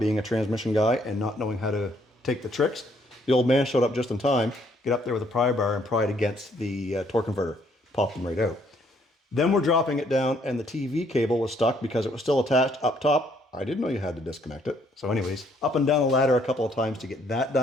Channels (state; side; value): normal; both; correlation 0.67